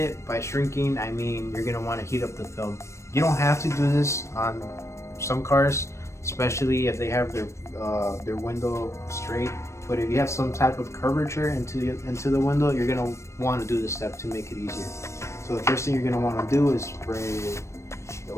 By shrinking, I mean you're going to want to heat up the film. You don't have to do this on some cars, especially if they have their window straight. But if you have some type of curvature into the window, you're going to want to do this step to make it easier. So the first thing you're going to want to do is spray the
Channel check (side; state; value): right; late; 0.14 ms